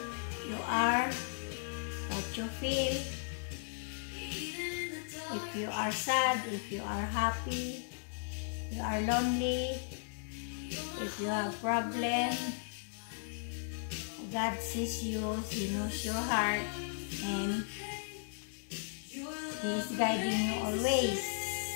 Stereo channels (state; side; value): silent; right; digital silence